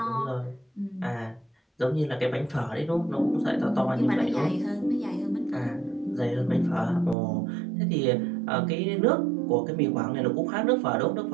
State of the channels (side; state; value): left; drops out; at 7.2 s